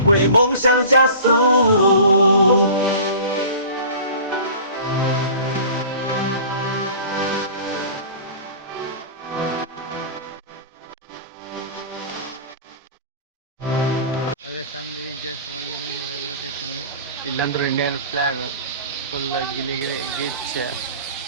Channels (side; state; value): both; inverted; correlation -0.41